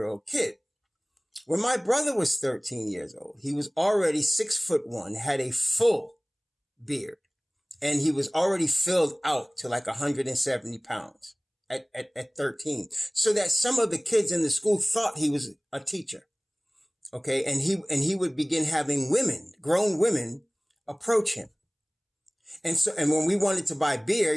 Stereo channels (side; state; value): both; identical; correlation 1.00